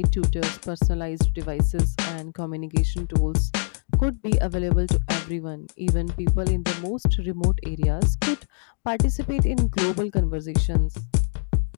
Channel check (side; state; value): right; silent; digital silence